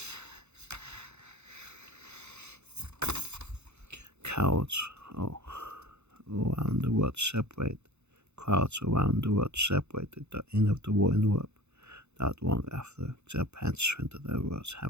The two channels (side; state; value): left; late; 0.81 ms